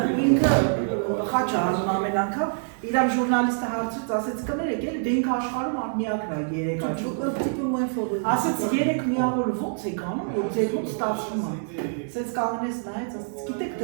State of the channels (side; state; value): left; silent; digital silence